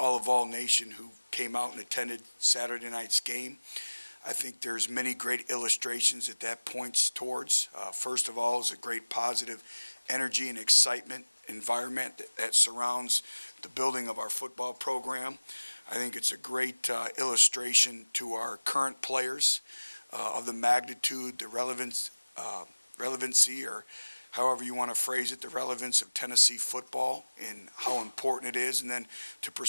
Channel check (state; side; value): inverted; both; correlation -1.00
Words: Nation who came out and attended Saturday night's game. I think there's many great illustrations that points towards. First of all, is a great positive energy and excitement environment that surrounds the building of our football program. I think it's a great illustration to our current players of the magnitude, the relevancy, or however you want to phrase it, the relevance of Tennessee football and how important it is. And then to